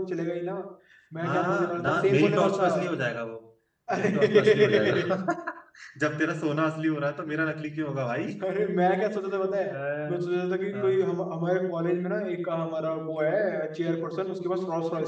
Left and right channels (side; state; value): both; identical; correlation 1.00